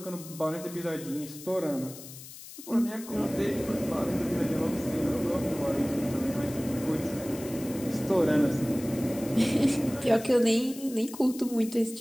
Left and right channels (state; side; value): noise; left; hiss, 15 dB below the sound